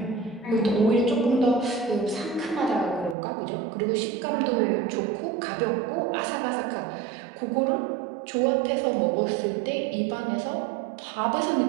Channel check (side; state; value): left; drops out; at 3.2 s